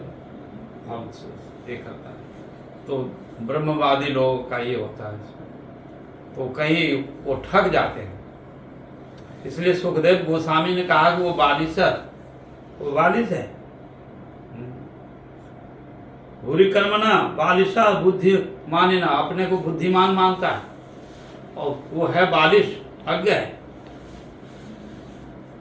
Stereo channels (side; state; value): both; identical; correlation 1.00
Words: हम ये करता है। तो ब्रह्मवादी लोगों का ये होता है। तो कहीं वो ठग जाते हैं। इसलिए सुखदेव गोस्वामी ने कहा कि वो बालिश है, वो बालिश है। भूरी कर्मणा बालिशा बुद्धि मानिना, अपने को बुद्धिमान मानता है और वो है बालिश, अज्ञ है।